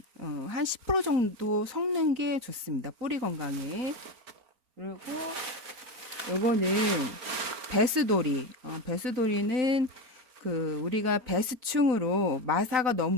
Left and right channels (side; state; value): left; late; 4.4 ms